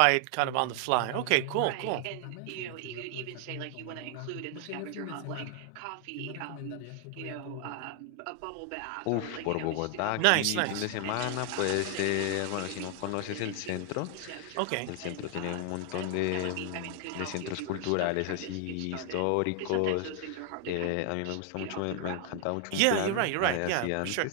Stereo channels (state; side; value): different; both; correlation 0.00